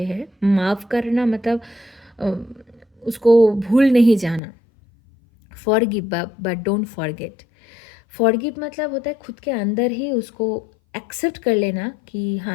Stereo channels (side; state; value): right; drops out; at 4.4 s